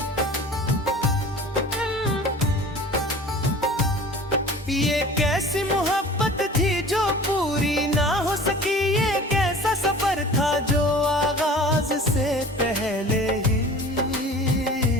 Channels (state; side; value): normal; both; correlation 0.42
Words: ये कैसी मोहब्बत थी जो पूरी ना हो सकी, ये कैसा सफर था जो आगाज से पहले ही